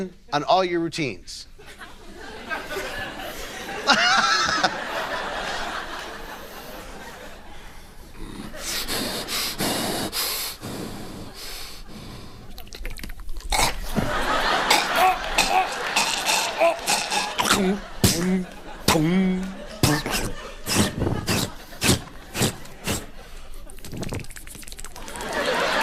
on all your routines.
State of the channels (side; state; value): both; identical; correlation 1.00